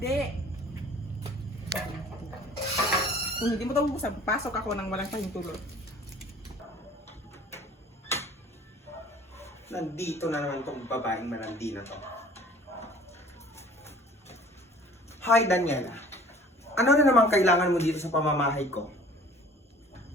Kung hindi mo ito bubuksan, pasok ako ng walang pahintulot. Nandito na naman tong babaeng malandi na to. Hi, Daniela. Ano na naman kailangan mo dito sa pamamahay ko?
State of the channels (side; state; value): both; normal; correlation 0.49